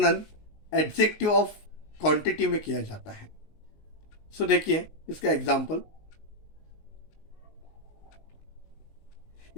एडजेक्टिव ऑफ क्वांटिटी में किया जाता है। देखिए इसका एग्जाम्पल,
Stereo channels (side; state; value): right; late; 19 ms